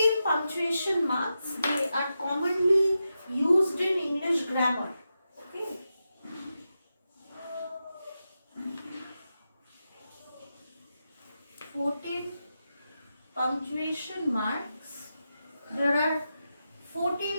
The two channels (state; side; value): inverted; both; correlation -0.89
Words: punctuation marks, they are commonly used in English grammar. Okay, 14 punctuation marks. There are